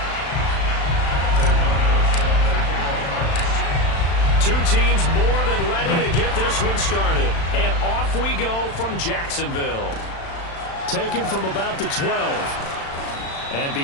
Two teams more than ready to get this one started. And off we go from Jacksonville. Taken from about the 12. And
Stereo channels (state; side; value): late; right; 36 ms